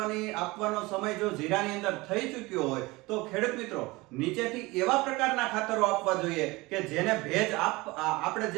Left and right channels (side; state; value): left; quieter; 22.3 dB